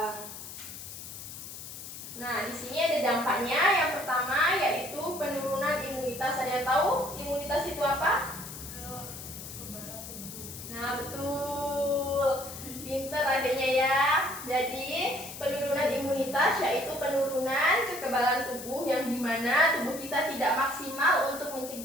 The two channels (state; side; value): noise; left; hiss, 11 dB below the sound